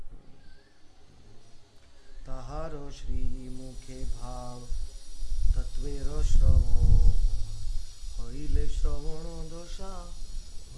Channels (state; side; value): identical; both; correlation 1.00